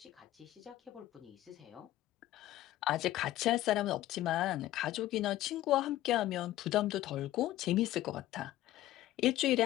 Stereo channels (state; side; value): quieter; right; 14.8 dB